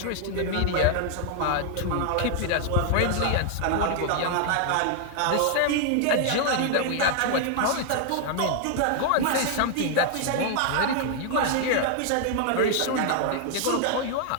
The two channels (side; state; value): both; different; correlation 0.00